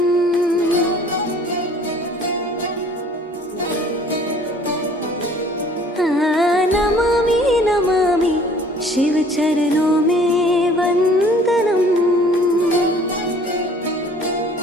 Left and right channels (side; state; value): both; normal; correlation 0.53